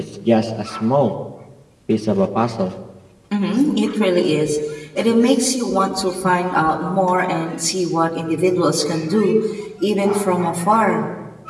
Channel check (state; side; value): identical; both; correlation 1.00